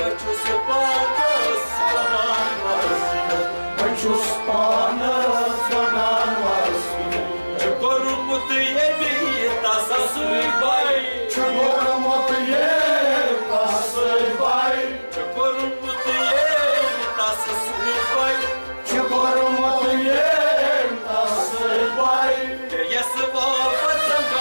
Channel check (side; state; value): both; inverted; correlation -1.00